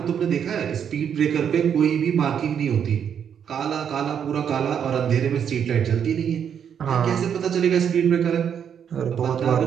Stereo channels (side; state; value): left; quieter; 8.1 dB